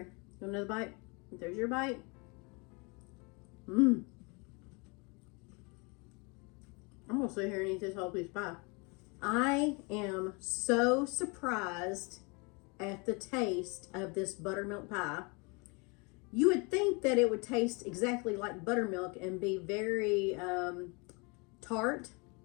another bite. There's your bite. I'm gonna sit here and eat this whole piece of pie. I am so surprised at the taste of this buttermilk pie. You would think that it would taste exactly like buttermilk and be very tart,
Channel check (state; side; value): quieter; right; 30.4 dB